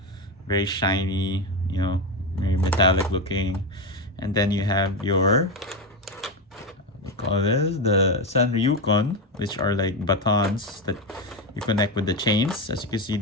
very shiny, very metallic looking. And then you have your, what do you call this, the Sanryukon, which are like batons that you connect with the chains. As you can see,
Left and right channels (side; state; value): both; normal; correlation 0.13